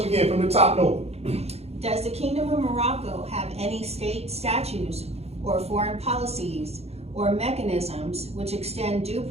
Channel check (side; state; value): left; late; 0.30 ms